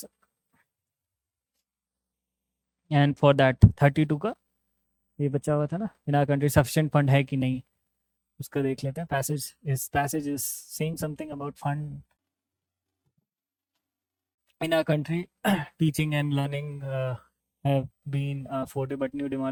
And for that 32 का ये बचा हुआ था ना, in our country sufficient fund है कि नहीं, उसका देख लेते हैं। Passage is saying something about fund in our country. Teaching and learning have been afforded, but new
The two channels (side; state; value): both; identical; correlation 1.00